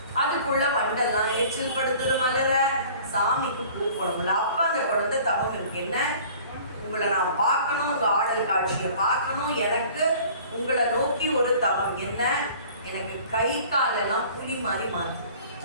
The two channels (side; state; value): both; inverted; correlation -0.48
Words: அதுக்குள்ள வண்டெல்லாம் எச்சில் படுத்துது மலர. சாமிக்கு பூ போடணும்ல. அப்ப அந்த குழந்தை தவம் இருக்கு. என்ன, உங்களை நான் பார்க்கணும், உங்க ஆடல் காட்சியை பார்க்கணும், எனக்கு உங்களை நோக்கி ஒரு தவம். என்ன, எனக்கு கை காலெல்லாம் புலி மாதிரி மாறும்.